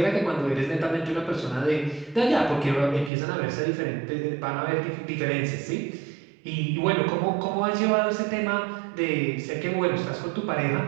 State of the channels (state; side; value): drops out; left; at 3.1 s